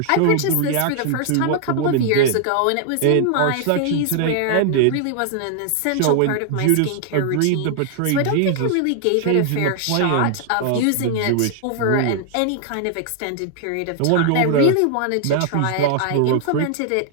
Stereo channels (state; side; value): different; both; correlation 0.00